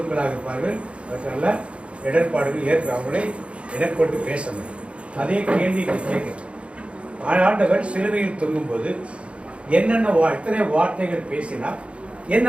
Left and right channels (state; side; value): late; left; 0.060 ms